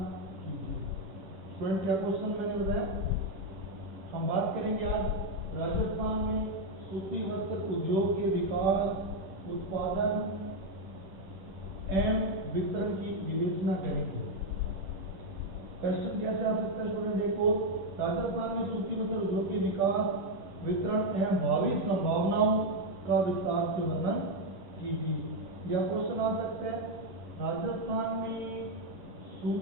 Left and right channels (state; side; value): late; left; 10 ms